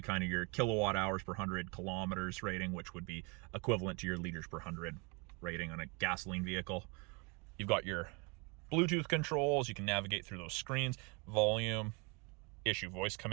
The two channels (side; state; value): left; quieter; 31.0 dB